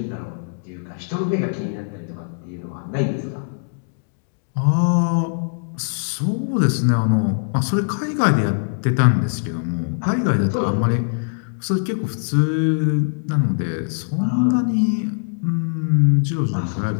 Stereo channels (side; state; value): right; silent; digital silence